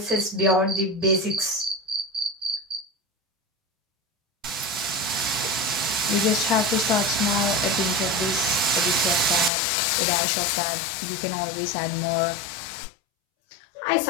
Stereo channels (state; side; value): drops out; right; at 9.5 s